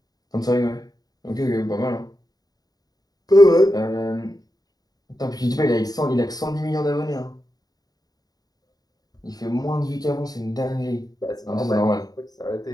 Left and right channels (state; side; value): late; right; 0.18 ms